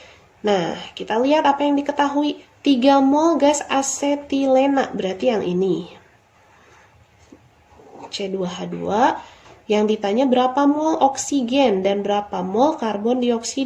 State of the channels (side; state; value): both; identical; correlation 1.00